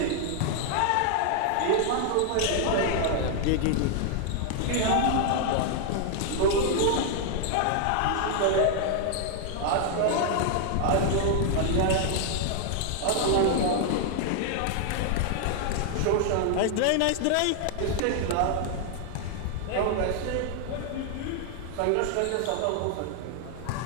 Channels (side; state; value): both; different; correlation 0.00